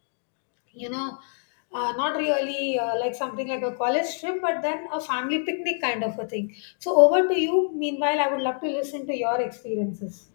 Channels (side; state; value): right; silent; 59 dB below the other